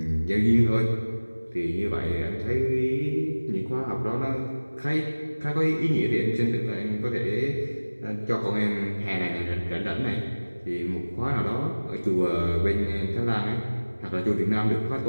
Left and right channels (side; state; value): both; inverted; correlation -1.00